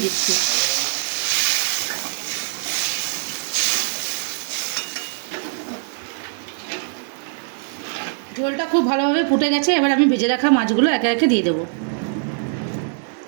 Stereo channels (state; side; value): silent; left; digital silence